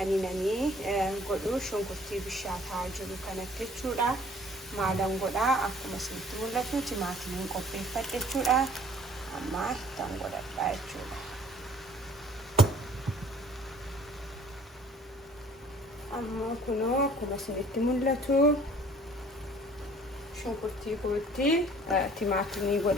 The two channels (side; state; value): both; normal; correlation 0.53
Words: inni godhu shunkurtii bishaataa jiru kanatti jechuudha. Maalan godhaa akkuma isinitti mul'atu timaatimiin qopheeffadhe jechuudha. Amma ittaan godhadhaa jechuudha. Amma kunoo akkuma isinitti mul'atu shunkurtii kootti timaatimii